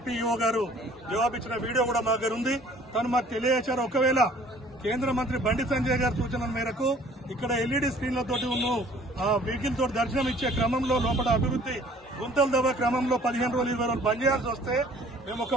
ఈఓ గారు జవాబిచ్చిన వీడియో కూడా మా దగ్గర ఉంది. తను మాకు తెలియజేశారు, ఒకవేళ కేంద్ర మంత్రి బండి సంజయ్ గారి సూచనల మేరకు ఇక్కడ ఎల్ఈడీ స్క్రీన్లతోటి ఉన్న వెహికల్ తోటి దర్శనం ఇచ్చే క్రమంలో లోపల అభివృద్ది గుంతలు దవ్వ క్రమంలో 15 రోజులు 20 రోజులు బంద్ చేయాల్సి వస్తే మేము ఒక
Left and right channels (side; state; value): both; normal; correlation 0.54